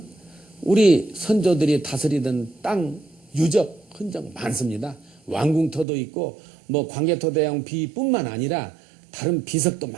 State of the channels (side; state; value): left; drops out; at 5.9 s